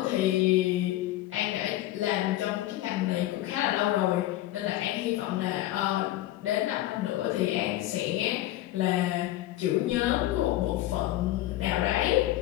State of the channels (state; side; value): quieter; right; 15.1 dB